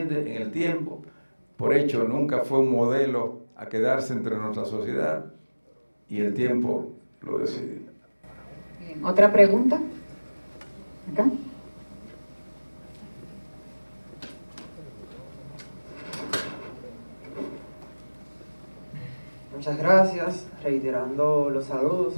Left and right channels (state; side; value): inverted; both; correlation -1.00